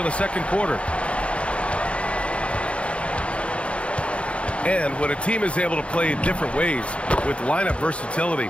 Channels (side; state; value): right; late; 0.060 ms